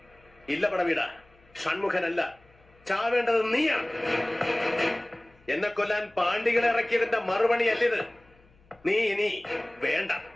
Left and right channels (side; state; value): left; noise; hum, 30 dB below the sound